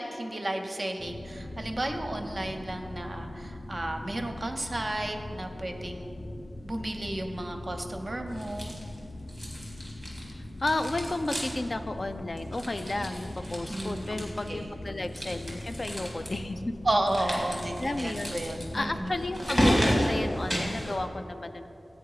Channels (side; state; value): both; normal; correlation 0.96